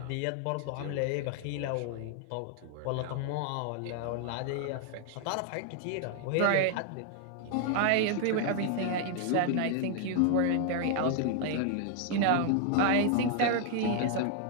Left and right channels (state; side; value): different; both; correlation 0.00